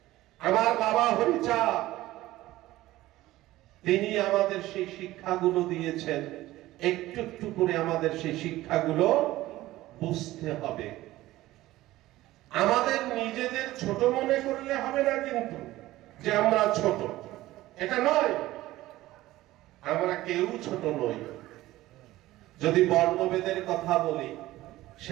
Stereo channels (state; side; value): quieter; left; 16.5 dB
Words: আমার বাবা হরিচাঁদ, তিনি আমাদের সেই শিক্ষাগুলো দিয়েছেন। একটু একটু করে আমাদের সেই শিক্ষাগুলো বুঝতে হবে। আমাদের নিজেদের ছোট মনে করলে হবে না, কিন্তু যে আমরা ছোট, এটা নয়। আমরা কেউ ছোট নই। যদি বর্ণভেদের কথা বলি,